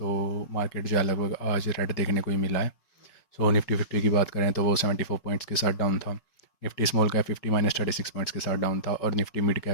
मार्केट जो है लगभग आज रेड देखने को ही मिला है। निफ्टी 50 की बात करें तो वो 74 पॉइंट्स के साथ डाउन था। निफ्टी स्मॉल कैप 50 -36 पॉइंट्स के साथ डाउन था और निफ्टी मिड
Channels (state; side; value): late; right; 5.4 ms